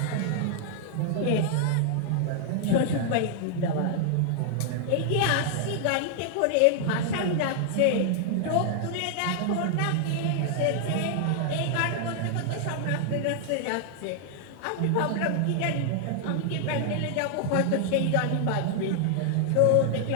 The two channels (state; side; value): different; both; correlation 0.00